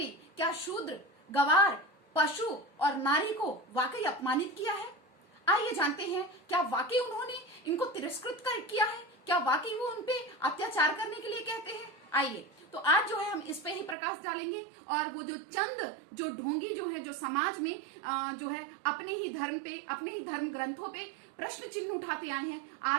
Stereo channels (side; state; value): left; drops out; at 14.0 s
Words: क्या शूद्र, गवार, पशु और नारी को वाकई अपमानित किया है। आइए जानते हैं क्या वाकई उन्होंने इनको तिरस्कृत किया है, क्या वाकई वो उनपे अत्याचार करने के लिए कहते हैं। आइए तो आज जो है हम इस पे ही प्रकाश डालेंगे और वो जो ढोंगी जो है जो समाज में जो है अपने ही धर्म ग्रंथों पे प्रश्न चिन्ह उठाते आए हैं,